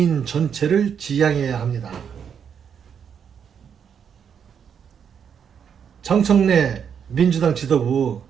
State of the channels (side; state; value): left; quieter; 7.6 dB